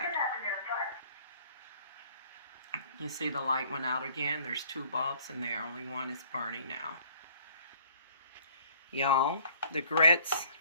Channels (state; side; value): inverted; both; correlation -0.56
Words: You see the light went out again. There's 2 bulbs in there. Only one is burning now. Y'all, the grits